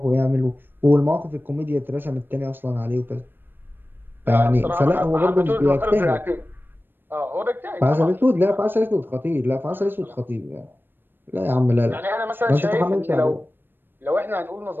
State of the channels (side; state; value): left; late; 0.096 ms